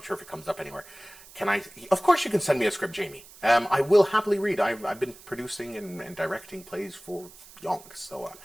sure if it comes up anywhere. Of course you can send me a script, Jamie. I will happily read. I've been producing and directing plays for yonks, so I'm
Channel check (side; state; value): right; noise; hiss, 20 dB below the sound